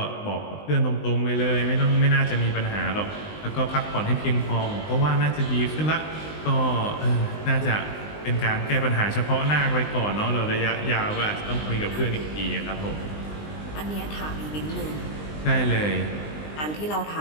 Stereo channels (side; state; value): right; late; 19 ms